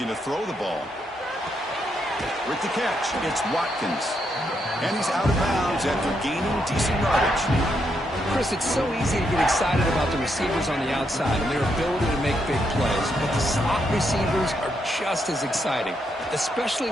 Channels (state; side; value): normal; both; correlation 0.79